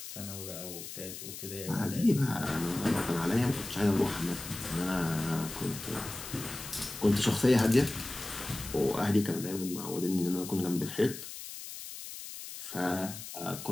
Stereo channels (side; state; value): left; noise; hiss, 10 dB below the sound